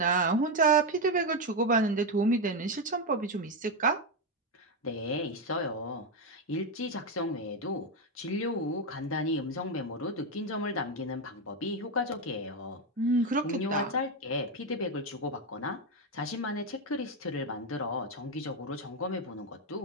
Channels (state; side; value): normal; both; correlation 0.08